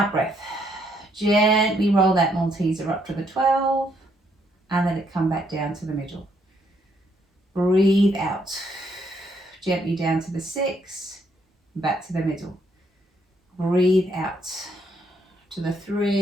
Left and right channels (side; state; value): both; normal; correlation 0.72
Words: breath, gently roll that Malteser up to the 12, and let it come back down to the middle. Breathe out. Gently down to the 6, back to the middle. Breathe out to the